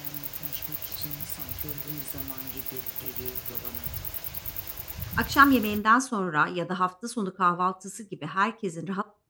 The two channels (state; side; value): identical; both; correlation 1.00